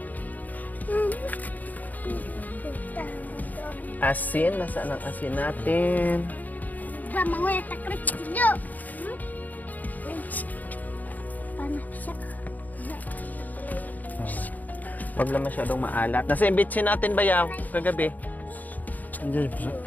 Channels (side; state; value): right; late; 0.081 ms